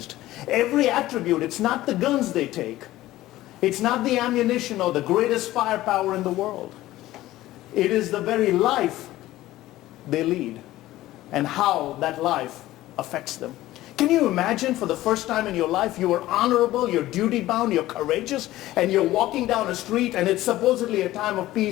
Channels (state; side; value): quieter; right; 15.9 dB